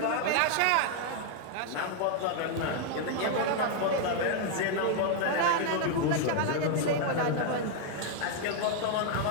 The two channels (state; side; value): different; both; correlation 0.00